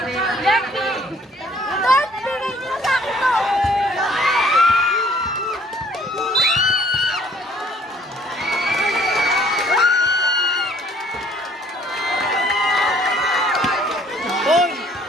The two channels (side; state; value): both; normal; correlation 0.59